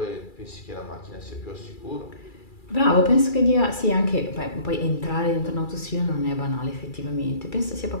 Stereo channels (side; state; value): right; late; 2.3 ms